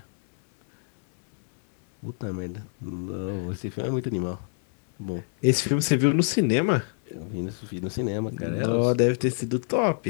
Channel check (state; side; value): silent; right; 61 dB below the other